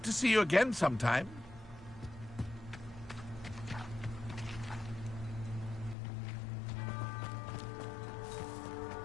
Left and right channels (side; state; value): right; drops out; at 6.0 s